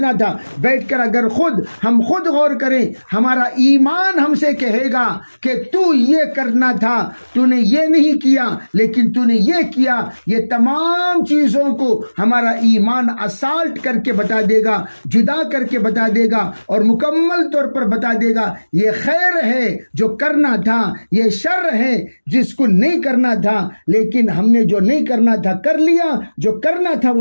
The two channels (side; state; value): both; inverted; correlation -1.00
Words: تھا۔ بیٹھ کر اگر ہم خود غور کریں، ہمارا ایمان ہم سے کہے گا کہ تو یہ کرنا تھا، تو نے یہ نہیں کیا، لیکن تو نے یہ کیا۔ یہ تمام چیزوں کو ہمارا ایمان اسالٹ کر کے بتا دے گا، جدا کر کے بتا دے گا، اور مکمل طور پر بتا دے گا یہ خیر ہے جو کرنا تھا، یہ شر ہے جس کو نہیں کرنا تھا، لیکن ہم نے جو نہیں کرنا تھا کر لیا، جو کرنا تھا